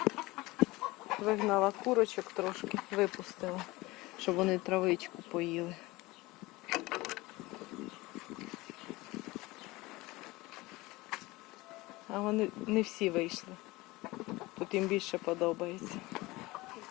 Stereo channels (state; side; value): quieter; right; 21.0 dB